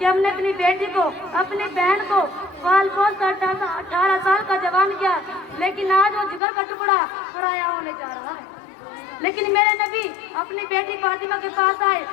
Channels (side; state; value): right; drops out; at 6.4 s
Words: हमने अपनी बेटी को, अपनी बहन को पाल पोस कर 18 साल का जवान किया, लेकिन आज वो जिगर का टुकड़ा पराया होने जा रहा है। लेकिन मेरे नबी अपनी बेटी फातिमा के पास आए